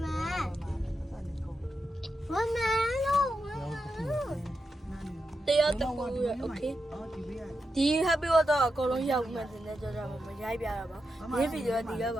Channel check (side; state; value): both; normal; correlation 0.87